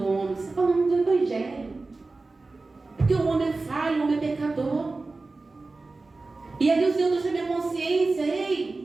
homem, você está falando do Evangelho. Porque o homem é falho, o homem é pecador. E ali o Senhor trouxe a minha consciência:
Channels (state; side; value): quieter; left; 3.5 dB